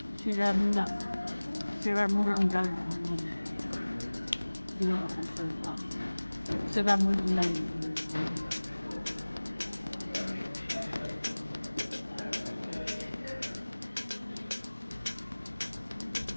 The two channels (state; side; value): inverted; both; correlation -1.00